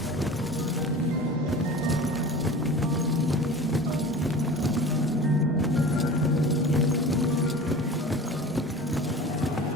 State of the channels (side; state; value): both; normal; correlation 0.37